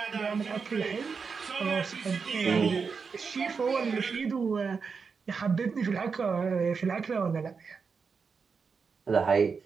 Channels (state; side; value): quieter; left; 5.4 dB